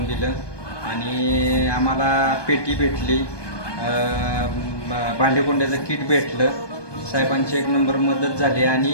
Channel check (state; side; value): late; right; 1.2 ms